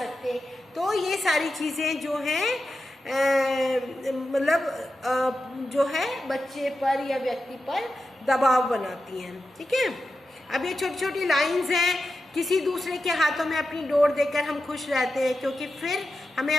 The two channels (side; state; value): both; normal; correlation 0.90